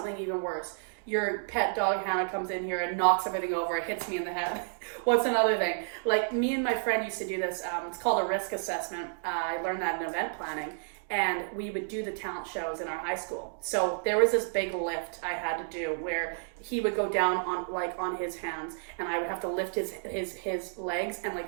even worse? Your pet dog Hannah comes in here and knocks everything over. It hits me in the head. What's another thing? Like, me and my friend used to do this. It's called a risk assessment. I learned that in event planning. And we would do the talent shows in our high school. So there was this big lift I had to do where he would go down on his hands, and I would have to lift his legs and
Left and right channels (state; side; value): silent; left; digital silence